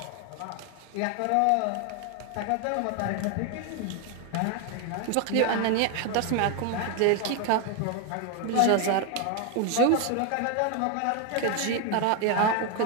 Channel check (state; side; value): different; both; correlation 0.01